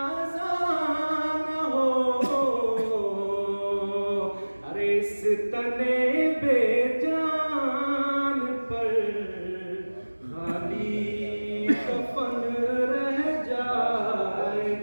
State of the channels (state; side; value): inverted; both; correlation -1.00